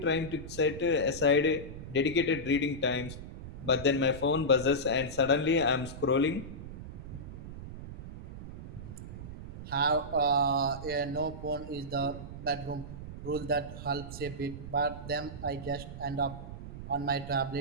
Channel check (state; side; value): noise; right; rumble, 11 dB below the sound